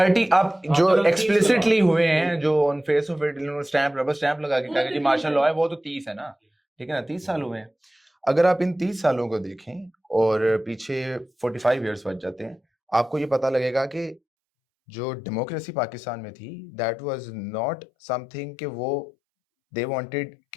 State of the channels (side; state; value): right; drops out; at 14.2 s